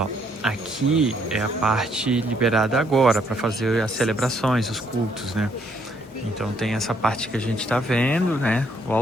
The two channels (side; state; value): both; normal; correlation 0.69